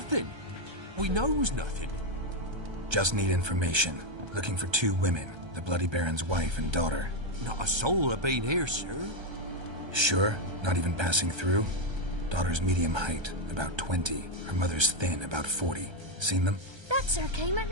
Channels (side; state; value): left; late; 1.3 ms